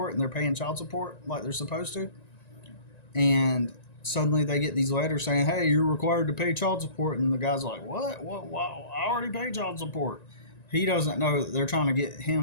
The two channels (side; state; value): right; late; 1.9 ms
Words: and they're paying child support like they're supposed to. And suddenly they get these letters saying, "Hey, you're required to pay child support," and the guy's like, "What? Wow, I already paid child support." He doesn't know that they're trying to get